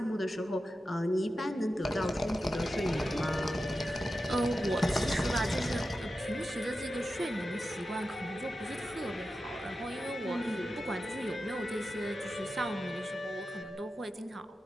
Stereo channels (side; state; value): both; normal; correlation 0.92